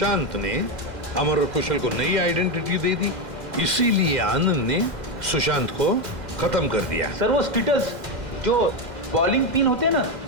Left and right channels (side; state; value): left; late; 2.1 ms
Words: ने अमर और कुशल को नई आइडेंटिटी दे दी। इसीलिए आनंद ने सुशांत को खत्म कर दिया। सर वो स्टिटल्स जो बॉलिंग पिन होते हैं ना,